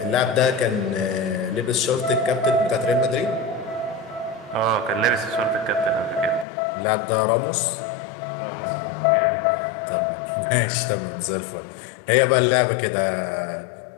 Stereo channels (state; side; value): drops out; right; at 6.5 s